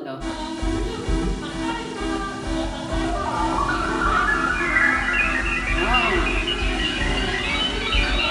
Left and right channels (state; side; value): identical; both; correlation 1.00